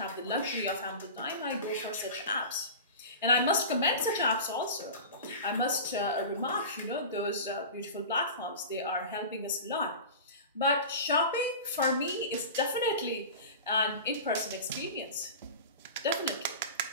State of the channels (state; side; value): inverted; both; correlation -0.32